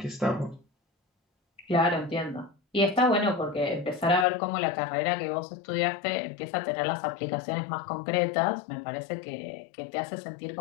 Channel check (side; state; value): right; drops out; at 4.2 s